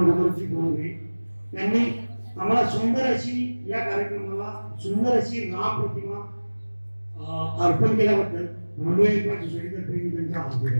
त्यांनी आम्हाला सुंदर अशी या कार्यक्रमाला सुंदर अशी राम प्रतिमा अर्पण केल्याबद्दल बोंडवे एम्पायर सोसायटीतर्फे मी त्यांचा आभार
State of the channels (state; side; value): inverted; both; correlation -1.00